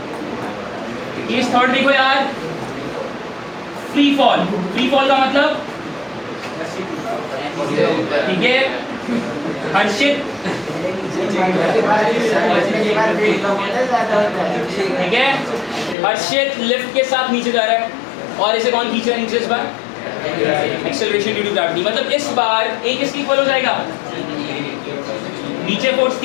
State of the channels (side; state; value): right; drops out; at 16.0 s